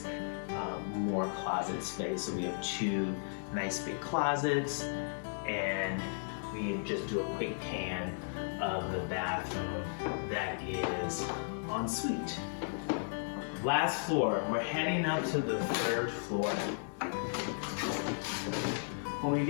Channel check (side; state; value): right; silent; 54 dB below the other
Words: More closet space. So we have 2 nice big closets, and we just do a quick pan of the bathroom that is en suite. Last floor, we're heading up to the 3rd floor. When we